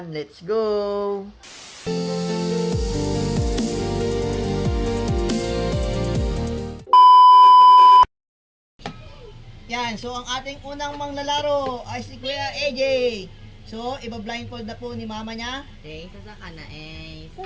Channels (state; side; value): identical; both; correlation 1.00